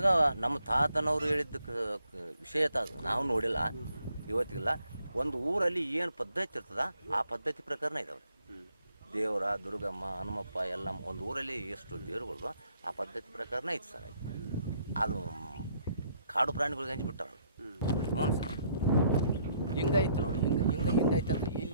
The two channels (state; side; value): inverted; both; correlation -0.70